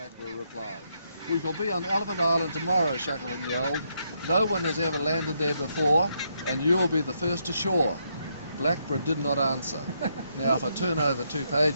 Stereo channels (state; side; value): inverted; both; correlation -0.77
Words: replied. We shall be on Elephant Island tomorrow, Shackleton yelled. No one has ever landed there before, and you will be the first ashore. Blackburn did not answer. Now, if I turn over 2